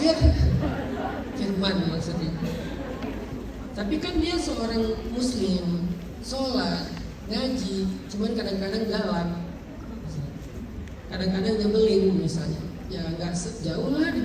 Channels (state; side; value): identical; both; correlation 1.00